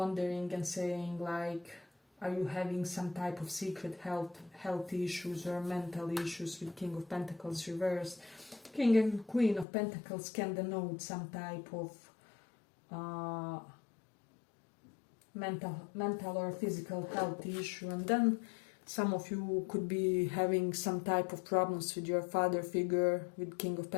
and saying like, are you having some type of secret health issues or mental issues? With King of Pentacles reversed, King and Queen of Pentacles can denote some type of mental or physical health issue, and then some of you could be having some type of problems with your father figure. With King of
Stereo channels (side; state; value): right; drops out; at 9.7 s